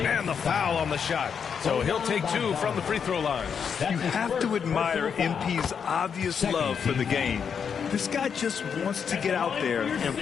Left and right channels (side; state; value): right; quieter; 6.9 dB